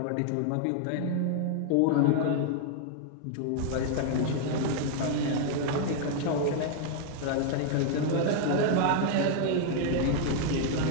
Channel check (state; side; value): different; both; correlation 0.00